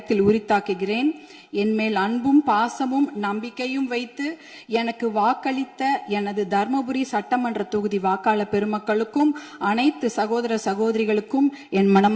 உரித்தாக்குகிறேன். என்மேல் அன்பும் பாசமும் நம்பிக்கையும் வைத்து எனக்கு வாக்களித்த எனது தர்மபுரி சட்டமன்ற தொகுதி வாக்காளர் பெருமக்களுக்கும் அனைத்து சகோதர சகோதரிகளுக்கும் என்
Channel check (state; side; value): identical; both; correlation 1.00